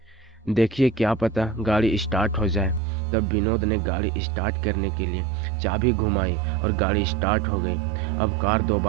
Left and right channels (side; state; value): left; drops out; at 2.8 s